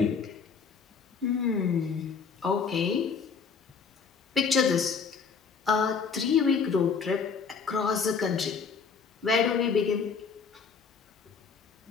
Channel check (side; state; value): right; quieter; 5.7 dB